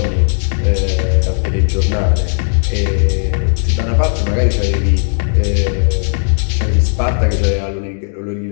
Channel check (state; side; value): silent; right; digital silence